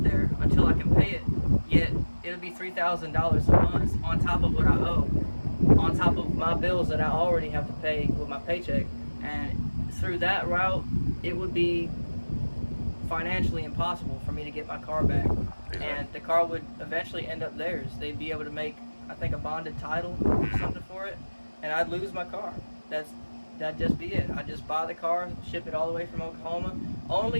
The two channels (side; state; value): both; inverted; correlation -1.00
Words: there until I can pay it, yet it'll be $3,000 a month on top of what I owe, on top of my bills that I already have to pay with my paycheck. And through that route, it would be financially impossible for me to get my car back. And the car would eventually end up theirs. They'd be able to make, I think, a bonded title or something for it, and I'd lose my car. That'd just be it. I'd just buy the car, ship it all the way from Oklahoma,